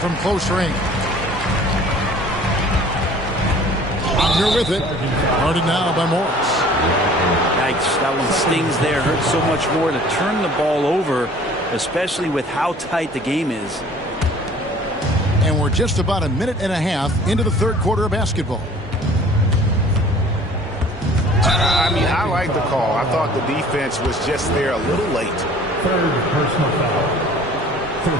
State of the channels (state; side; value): normal; both; correlation 0.50